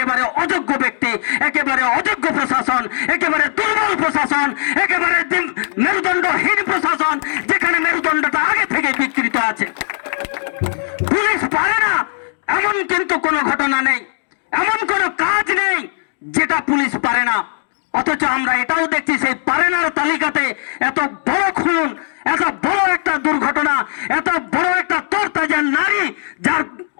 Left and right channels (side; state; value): right; silent; digital silence